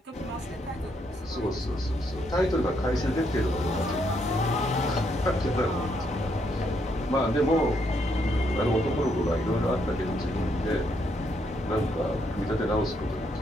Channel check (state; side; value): normal; both; correlation 0.75